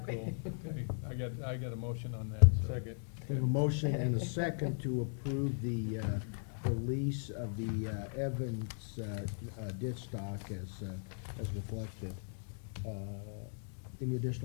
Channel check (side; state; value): right; silent; digital silence